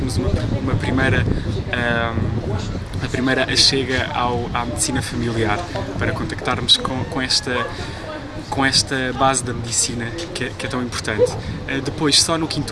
uma primeira a primeira chega à medicina familiar, para contactarmos com esta base da medicina que é tão importante. Depois, só no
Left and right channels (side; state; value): both; identical; correlation 1.00